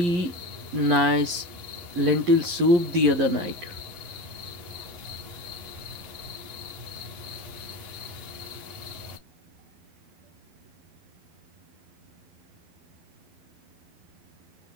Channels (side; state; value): left; late; 11 ms